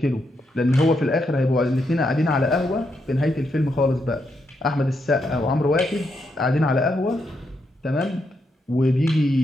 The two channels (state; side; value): normal; both; correlation 0.81